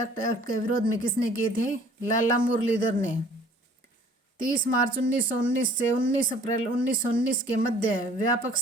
एक्ट के विरोध में किसने किए थे? लाला मुरलीधर ने। 30 मार्च 1919 से 19 अप्रैल 1919 के मध्य व्यापक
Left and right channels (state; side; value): normal; both; correlation 0.54